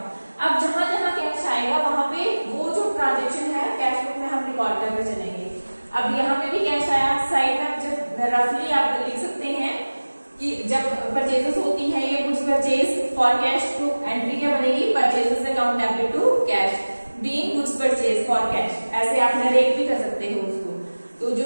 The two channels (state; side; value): inverted; both; correlation -1.00